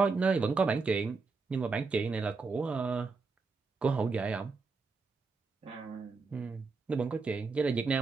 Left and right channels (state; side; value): quieter; left; 4.4 dB